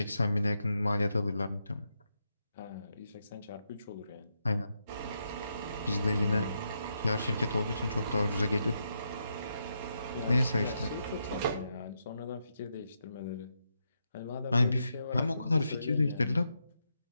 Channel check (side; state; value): both; inverted; correlation -0.82